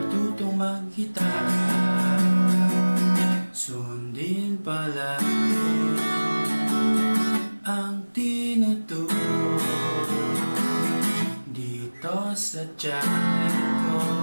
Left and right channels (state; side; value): inverted; both; correlation -1.00